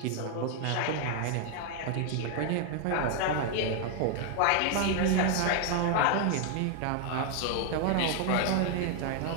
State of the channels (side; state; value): both; different; correlation 0.00